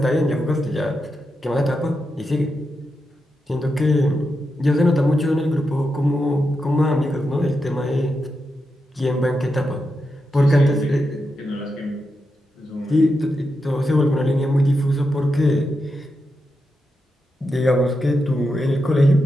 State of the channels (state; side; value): normal; both; correlation 0.87